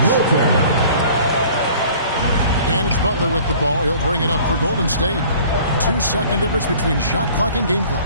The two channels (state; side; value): inverted; both; correlation -0.50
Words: And it's Butler with the ball. He'll bring it up for Golden State. 2-second difference between shot clock and game